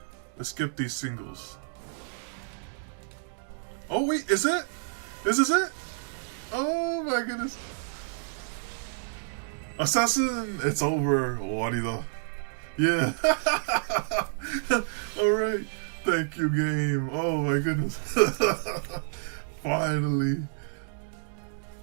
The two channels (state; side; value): silent; left; digital silence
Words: Let's skip these singles. Oh wait, is it? Is this it? Oh my goodness. Assassin, it's over. Warida. Yeah. Alright. Thank you, game. Oh my goodness. Finally.